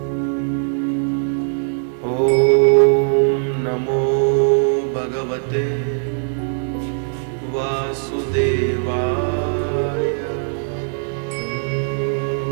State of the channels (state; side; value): silent; left; digital silence